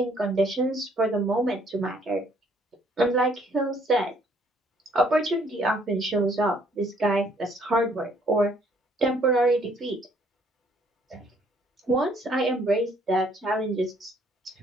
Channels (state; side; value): normal; both; correlation 0.64